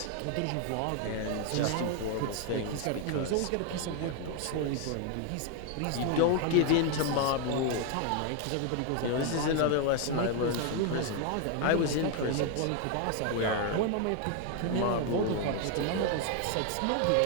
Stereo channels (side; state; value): both; different; correlation 0.01